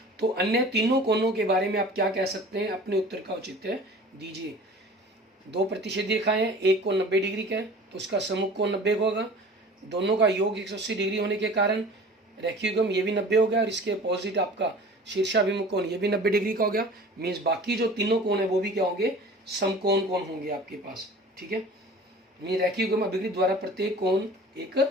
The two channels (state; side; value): normal; both; correlation 0.42